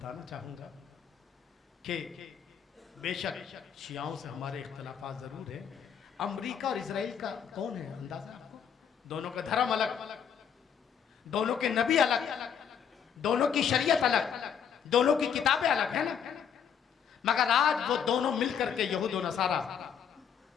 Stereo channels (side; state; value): right; quieter; 7.8 dB